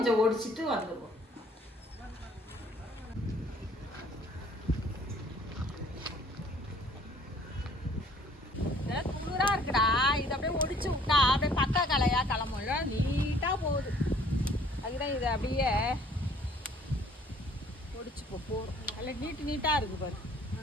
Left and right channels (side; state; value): both; normal; correlation 0.57